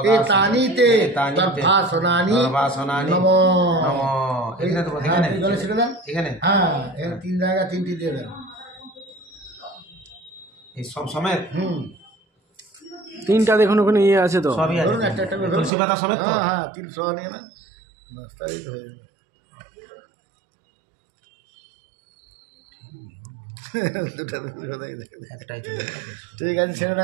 এতানি তে দর্ভাসনানি নমঃ। জলে ছিটে দেন এখানে। হ্যাঁ, এখানে তিন জায়গা তিনটি দিয়ে দেন এই সব সমেত। তিনটা দেখুন ওখানে ইয়ে আছে তো, সবই আছে, ধরুন একটা একটা করে তুলসী পাতা সমেত তো। হ্যাঁ, 300 নিয়ে না, বাস তাই তো হয়ে যাবে। একটাই ঠিক আছে, ছেড়ে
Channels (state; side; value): drops out; left; at 15.7 s